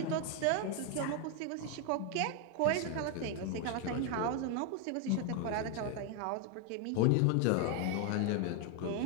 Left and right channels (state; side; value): different; both; correlation 0.01